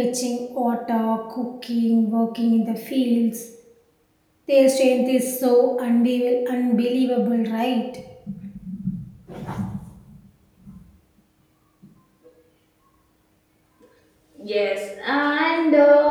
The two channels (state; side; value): identical; both; correlation 1.00